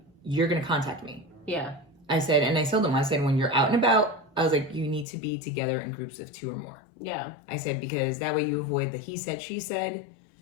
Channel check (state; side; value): drops out; right; at 5.1 s